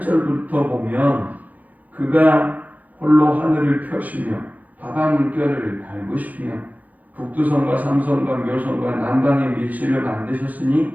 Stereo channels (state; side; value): late; left; 0.079 ms